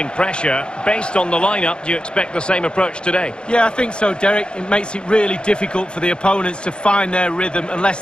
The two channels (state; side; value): late; right; 0.052 ms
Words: pressure. Based on the lineup, do you expect the same approach today? Yeah, I think so, Derek. It makes it really difficult for the opponents to find their rhythm unless